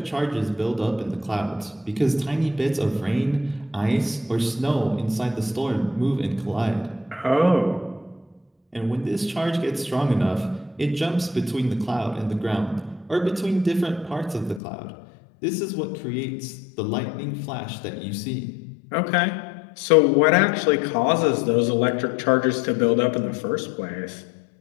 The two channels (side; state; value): right; drops out; at 14.6 s